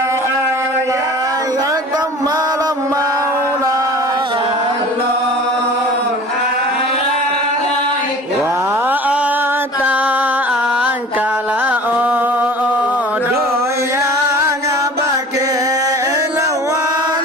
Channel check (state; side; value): normal; both; correlation 0.42